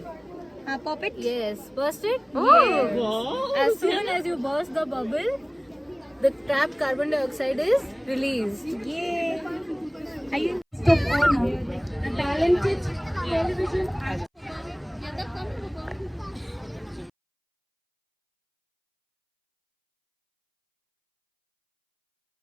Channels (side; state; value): both; identical; correlation 1.00